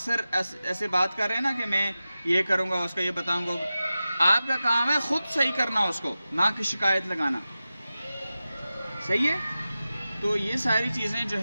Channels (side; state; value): both; inverted; correlation -0.95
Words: ایسے بات کر رہے ہیں نا کہ میں یہ کروں گا، اس کا یہ بتاؤں گا. آپ کا کام ہے خود صحیح کرنا اس کو، نہ کہ شکایت لگانا. صحیح ہے؟ تو یہ ساری چیزیں جو